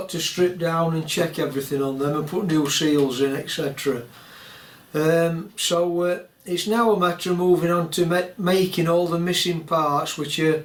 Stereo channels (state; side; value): identical; both; correlation 1.00